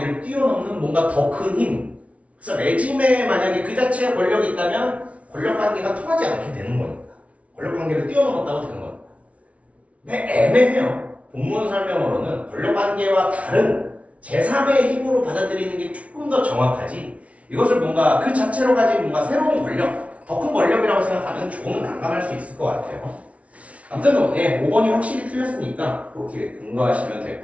뛰어넘는 뭔가 더 큰 힘. 그래서 레짐에 만약에 그 자체의 권력이 있다면 권력관계가 통하지 않게 되는 겁니다. 권력관계를 뛰어넘었다고 되는 겁니다. 근데 애매해요. 본문 설명으로는 권력관계와 다른 제3의 힘으로 받아들이는 게 조금 더 정확하지. 이것을 뭔가 그 자체로 가진 뭔가 새로운 권력, 더 큰 권력이라고 생각하면 조금 난감할 수 있을 것 같아요. 아무튼 5번이 확실히 틀렸으니까 그렇게 근거하시면 될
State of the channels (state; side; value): late; left; 0.065 ms